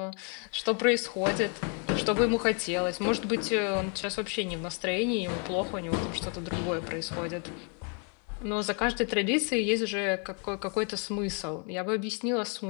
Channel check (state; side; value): quieter; right; 37.9 dB